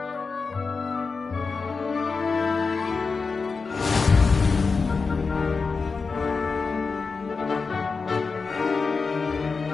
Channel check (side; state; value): right; quieter; 4.6 dB